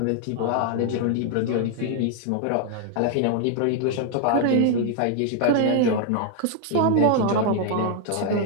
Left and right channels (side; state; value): both; different; correlation 0.00